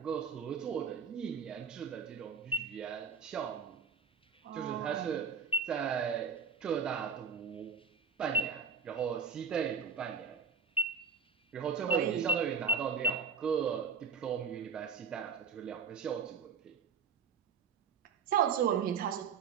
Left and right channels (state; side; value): quieter; left; 5.9 dB